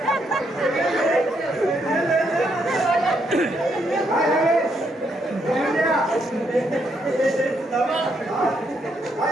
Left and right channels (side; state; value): both; normal; correlation 0.76